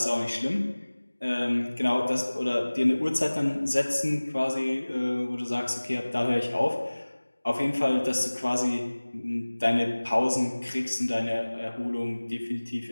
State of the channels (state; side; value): inverted; both; correlation -1.00